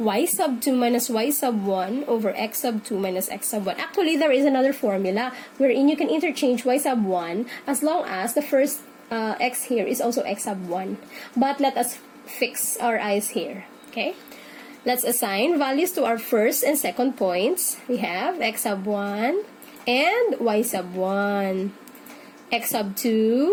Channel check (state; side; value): identical; both; correlation 1.00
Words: sub 2 minus Y sub 1 over X sub 2 minus X sub 1. Actually, there is another formula wherein you can interchange Y sub 1 as long as the first X here is also X sub 1. But let us fix our eyes here. Okay? Let's assign values to our first and second points. We have X sub 1 and Y sub 1. X sub